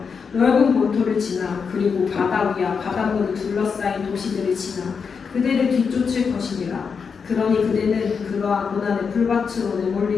넓은 본토를 지나 그리고 바다 위와 바닷물을 둘러싸인 도시들을 지나 그대를 뒤쫓을 것이니라. 그러니 그대는 그러한 고난의 풀밭으로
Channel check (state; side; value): quieter; right; 5.8 dB